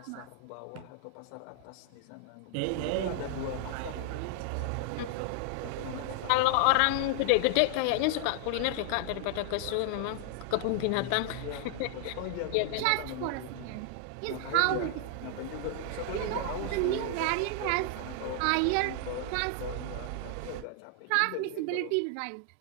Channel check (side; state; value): both; different; correlation 0.00